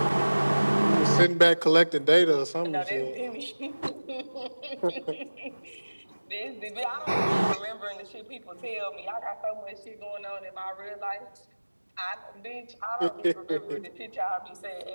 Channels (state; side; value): inverted; both; correlation -1.00